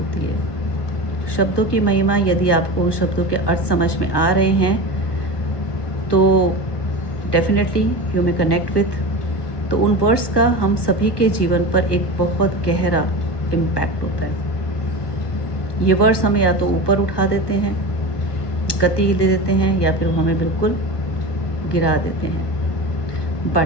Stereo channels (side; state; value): right; late; 1.1 ms